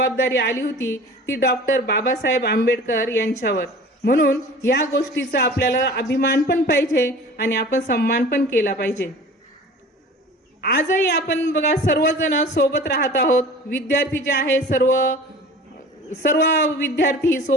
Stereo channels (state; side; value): normal; both; correlation 0.42